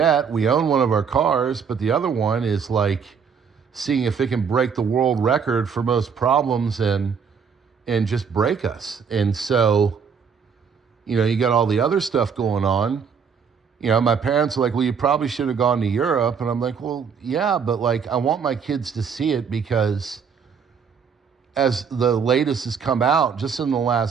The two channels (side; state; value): left; quieter; 6.4 dB